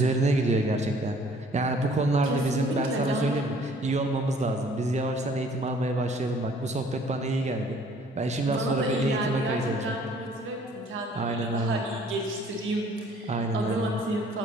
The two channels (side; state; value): both; normal; correlation 0.57